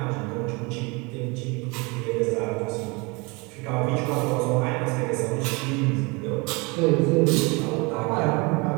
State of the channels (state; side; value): quieter; left; 27.8 dB